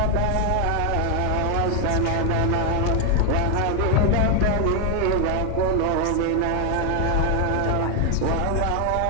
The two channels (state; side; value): different; both; correlation 0.01